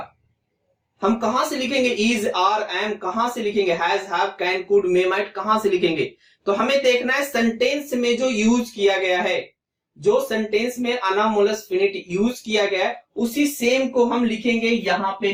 हम कहां से लिखेंगे, इज, आर, एम कहां से लिखेंगे, has, have, can, could, may, might कहां से लिखेंगे। तो हमें देखना है सेंटेंस में जो यूज किया गया है, जो सेंटेंस में अनामोलस फिनिट यूज किया गया है उसी सेम को हम लिखेंगे यहां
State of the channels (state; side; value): identical; both; correlation 1.00